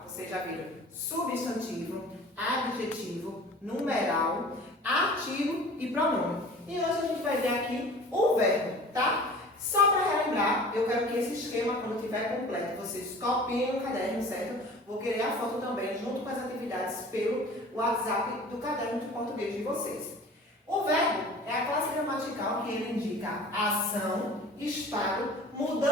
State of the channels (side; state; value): both; normal; correlation 0.43